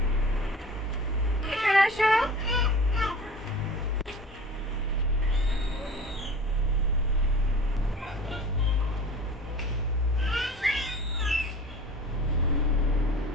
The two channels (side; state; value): both; normal; correlation 0.41